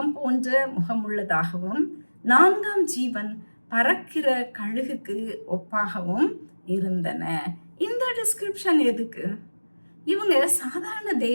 போன்ற முகமுள்ளதாகவும், 4ஆம் ஜீவன் பறக்கிற கழுகுக்கு ஒப்பாகவும் இருந்தன. இந்த டிஸ்கிரிப்ஷன் எதுக்கு? இவங்க சாதாரண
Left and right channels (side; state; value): both; inverted; correlation -1.00